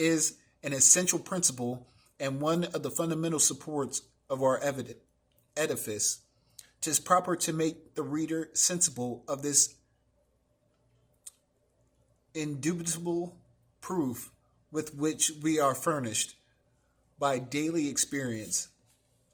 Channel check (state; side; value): identical; both; correlation 1.00